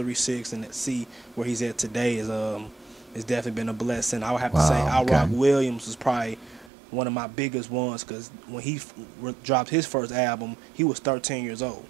and see where he's at today is definitely been a blessing. I would have to say Wow, Al okay. Rock Williams was probably one of my biggest ones, because when he dropped his first album, he was 13 years old.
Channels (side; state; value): left; drops out; at 6.7 s